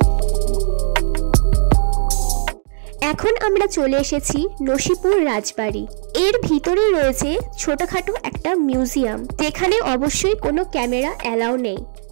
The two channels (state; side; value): silent; left; digital silence